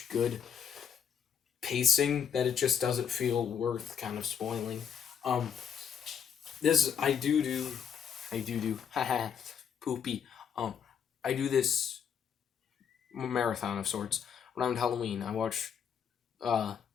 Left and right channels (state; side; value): quieter; right; 7.7 dB